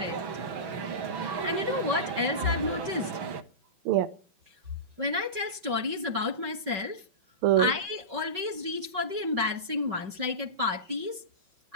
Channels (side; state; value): left; late; 5.3 ms